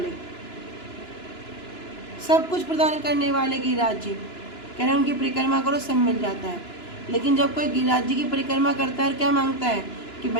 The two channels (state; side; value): late; right; 2.9 ms